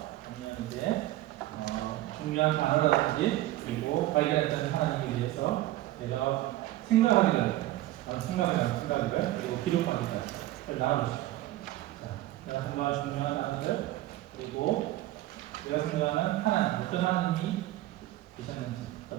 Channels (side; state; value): left; quieter; 15.8 dB